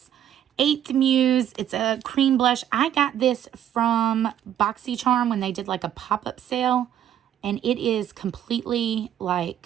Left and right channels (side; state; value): left; quieter; 10.6 dB